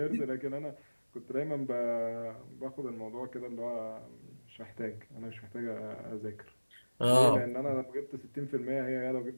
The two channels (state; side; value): inverted; both; correlation -1.00